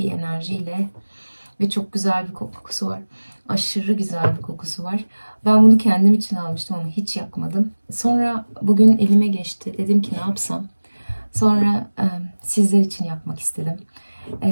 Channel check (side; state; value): both; inverted; correlation -1.00